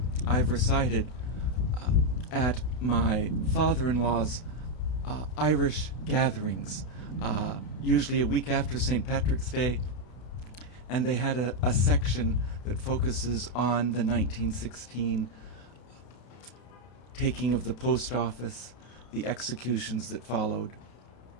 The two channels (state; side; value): late; right; 32 ms